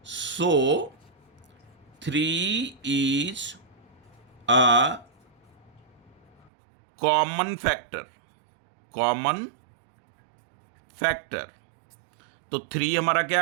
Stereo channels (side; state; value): left; drops out; at 6.5 s